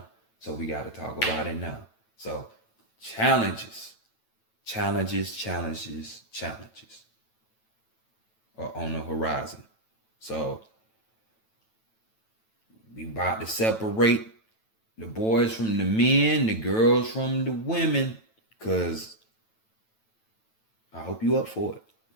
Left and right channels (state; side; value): late; right; 9.1 ms